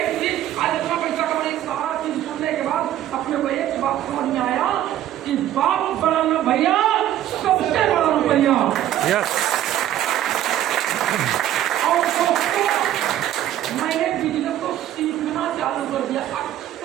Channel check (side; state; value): left; quieter; 12.3 dB